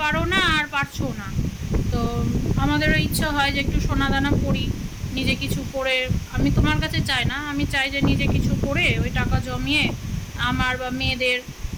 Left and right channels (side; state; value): both; identical; correlation 1.00